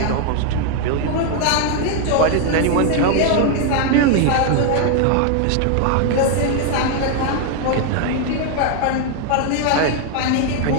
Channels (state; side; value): different; both; correlation 0.00